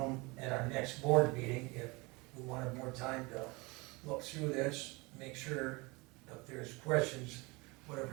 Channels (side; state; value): left; quieter; 25.8 dB